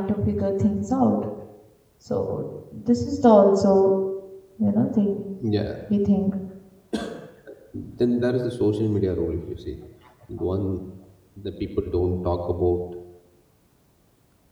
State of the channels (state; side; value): identical; both; correlation 1.00